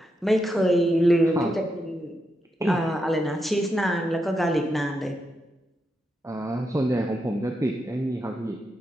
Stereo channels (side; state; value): both; normal; correlation 0.84